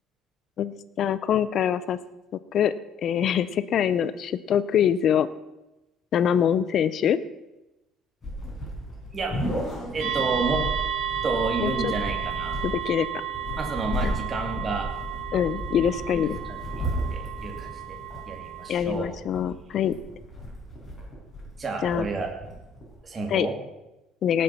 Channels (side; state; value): right; quieter; 3.6 dB